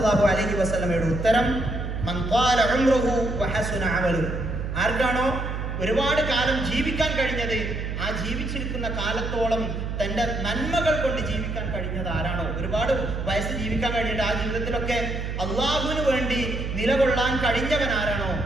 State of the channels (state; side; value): noise; right; hum, 4 dB below the sound